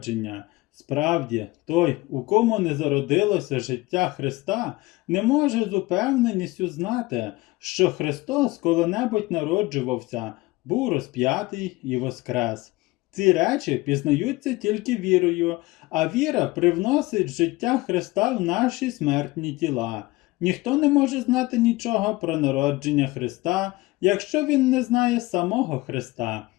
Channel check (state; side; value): quieter; right; 20.7 dB